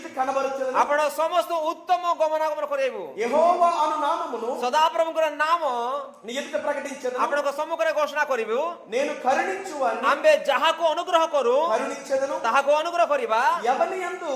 కనబరుచును. आपण समस्त उत्तम गमनागमन करेबु యెహోవా అను నామమును सदा प्रभुकर नाम నీ ఎదుట ప్రకటించెదను. आपण को सम्मुख रे घोषणा करिबु నేను కరుణించువాని अंबे जहा को अनुग्रह करू కరుణించెదను. ताहा को अनुग्रह करिबा ఎవని యందు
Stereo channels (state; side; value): identical; both; correlation 1.00